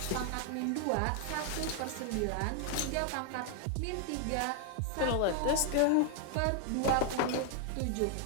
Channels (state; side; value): different; both; correlation 0.00